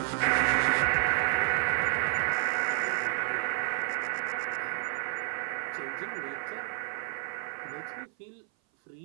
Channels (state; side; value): silent; left; 56 dB below the other